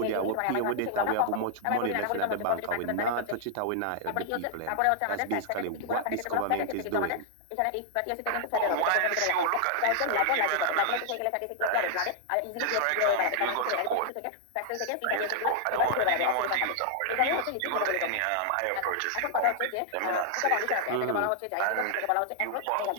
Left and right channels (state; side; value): different; both; correlation -0.01